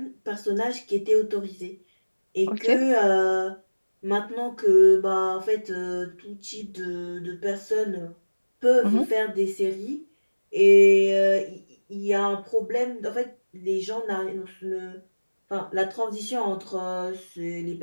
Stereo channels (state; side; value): inverted; both; correlation -1.00